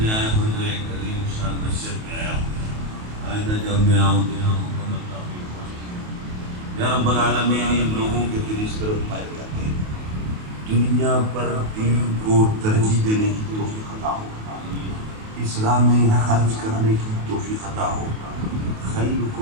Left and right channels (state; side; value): late; left; 28 ms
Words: آیا ہوں تو ایک عظیم شان مسجد میں آیا ہوں۔ آئندہ جب میں آؤں تو یہاں مکمل تعمیر ہو۔ یا رب العالمین، ان لوگوں کے دل اس طرف مائل کرتے ہیں، دنیا پر دین کو ترجیح دینے کی توفیق عطا ہو، اسلام میں خرچ کرنے کی توفیق عطا ہو۔